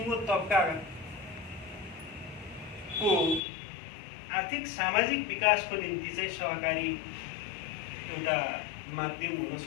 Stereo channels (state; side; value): drops out; right; at 3.4 s